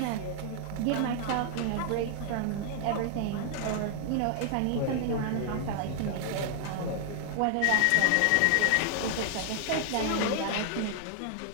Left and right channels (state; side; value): different; both; correlation 0.00